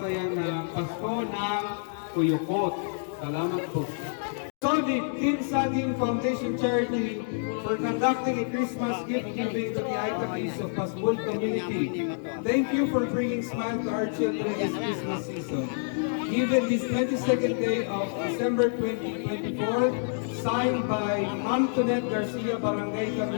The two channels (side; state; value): right; silent; digital silence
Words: ng Pasko ng Kuyukot. Salamat po. Solid Team Saging Foundation Charity for conducting a Christmas gift giving to the Aitaquis of Pasbol community. Thank you for bringing smile to our children this Christmas season. Given this 22nd day of December 2024, signed by Ma'am Tonet Garcia, Barangay